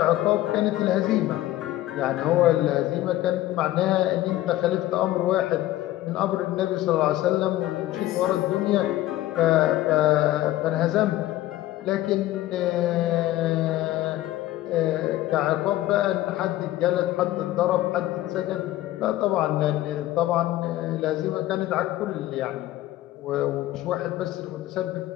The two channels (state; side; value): quieter; right; 15.2 dB